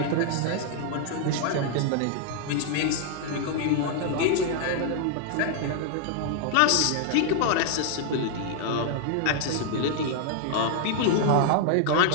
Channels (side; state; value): both; different; correlation 0.00